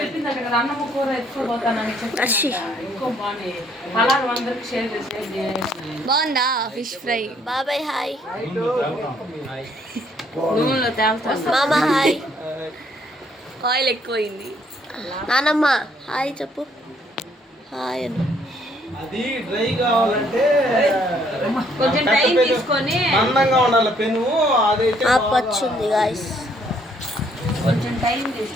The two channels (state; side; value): normal; both; correlation 0.66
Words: బాగుందా ఫిష్ ఫ్రై? బాబాయ్ హాయ్. నూనెలో తేల్తాను. మామ హాయ్. ఆయిల్ ఎక్కువైంది. నానమ్మ హాయ్ చెప్పు. హాయ్ అను. అది డ్రై కావాలంటే కొంచెం టైం తీసుకొని అందంగా ఉండాలి పెను. అదైతే పచ్చుంది గాయస్. కొంచెం టైం